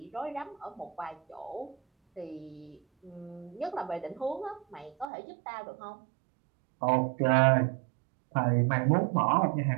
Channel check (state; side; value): drops out; left; at 5.1 s